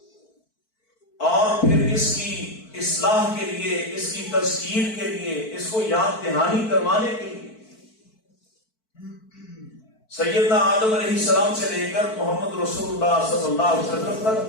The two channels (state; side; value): late; right; 4.5 ms